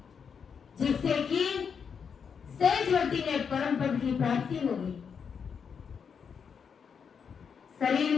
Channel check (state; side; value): quieter; right; 6.6 dB